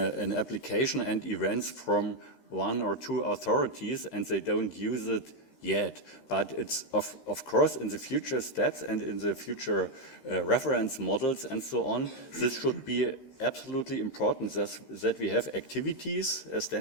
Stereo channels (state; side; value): late; right; 13 ms